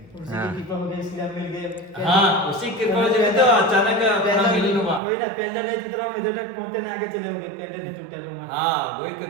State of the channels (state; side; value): drops out; left; at 5.0 s